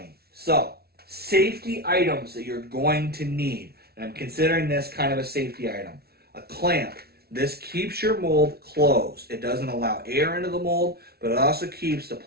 So, safety items that you're going to need. And I'm considering this kind of a safety item. A clamp. This keeps your mold closed. It doesn't allow air into the mold, but it also keeps the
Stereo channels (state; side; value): late; left; 0.45 ms